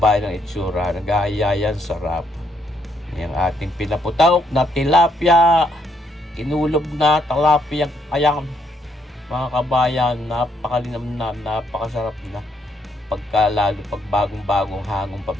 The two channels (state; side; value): normal; both; correlation 0.73